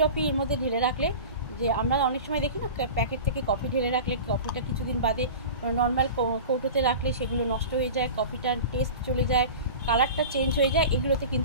এর মধ্যে ঢেলে রাখলে, যে আমরা অনেক সময় দেখি না প্যাকেট থেকে কফি ঢেলে রাখলে কফিটা কিছুদিন বাদে নর্মাল কৌটোতে রাখলে সেগুলো নষ্ট হয়ে যায়, কফিটার টেস্ট চলে যায়, কালারটা চেঞ্জ হয়ে যায়। এগুলোতে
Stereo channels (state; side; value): inverted; both; correlation -0.34